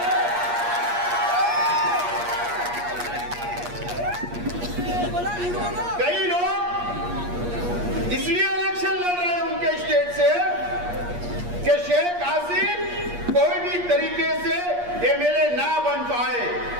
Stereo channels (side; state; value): left; late; 8.4 ms